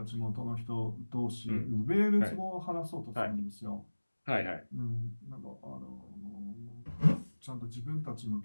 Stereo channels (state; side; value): inverted; both; correlation -1.00